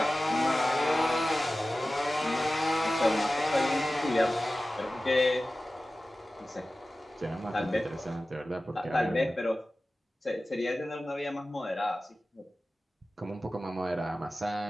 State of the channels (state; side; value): normal; both; correlation 0.96